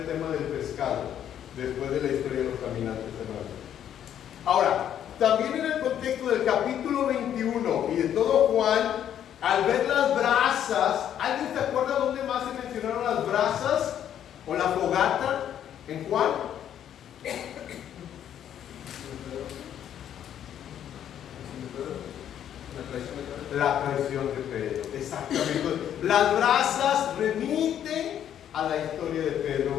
tema del pescado, después de la historia de los caminantes de Maús. Ahora, también en el contexto del capítulo 21 y de todo Juan, al ver las brasas, ¿alguien se acuerda dónde más se mencionaron las brasas o la fogata en Juan? La traición de Pedro, exactamente. Las brasas remiten a la historia de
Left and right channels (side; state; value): right; quieter; 10.0 dB